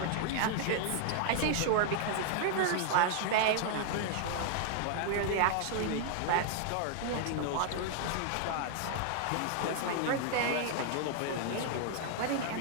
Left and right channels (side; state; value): both; different; correlation 0.00